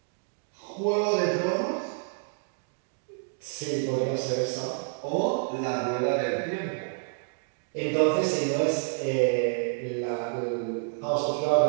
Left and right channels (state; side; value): silent; left; 59 dB below the other